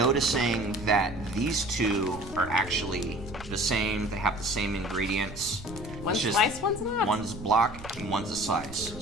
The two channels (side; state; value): right; noise; rumble, 14 dB below the sound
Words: that these two are actually the same. They have the same ingredients. One's It's just sliced, one's not. One's block and one's a slice.